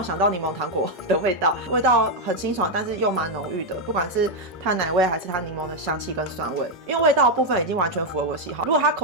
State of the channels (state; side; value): normal; both; correlation 0.02